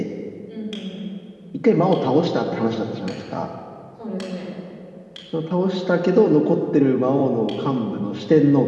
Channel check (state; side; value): identical; both; correlation 1.00